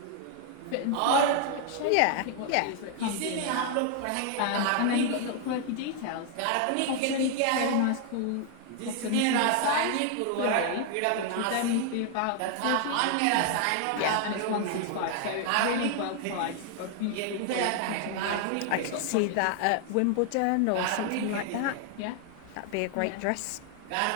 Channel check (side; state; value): both; different; correlation 0.00